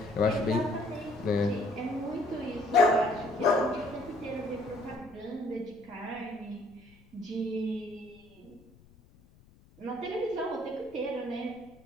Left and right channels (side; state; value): left; noise; rumble, 26 dB below the sound